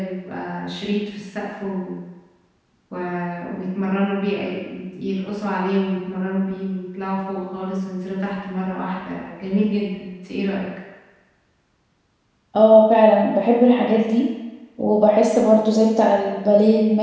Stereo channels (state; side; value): identical; both; correlation 1.00